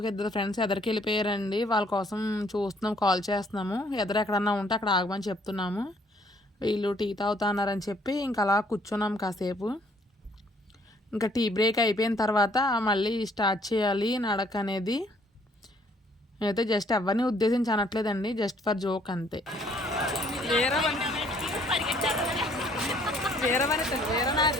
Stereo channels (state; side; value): normal; both; correlation 0.63